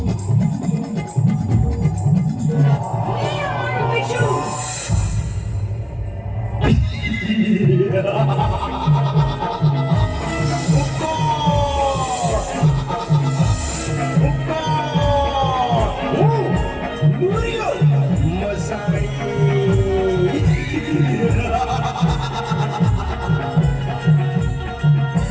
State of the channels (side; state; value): both; identical; correlation 1.00